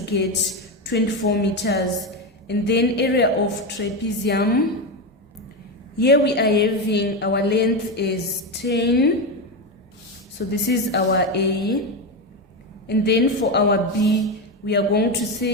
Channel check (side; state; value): both; normal; correlation 0.13